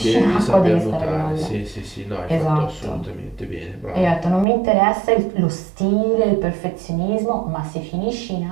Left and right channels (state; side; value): drops out; left; at 4.5 s